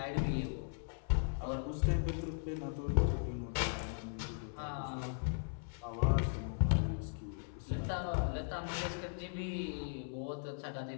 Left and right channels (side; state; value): right; silent; 52 dB below the other